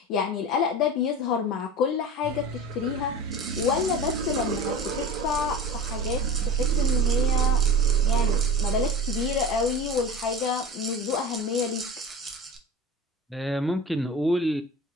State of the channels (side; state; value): both; normal; correlation 0.33